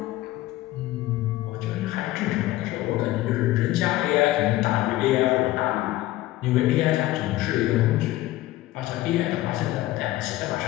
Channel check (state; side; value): quieter; right; 16.4 dB